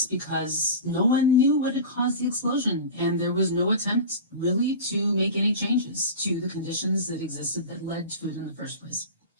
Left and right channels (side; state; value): both; inverted; correlation -0.30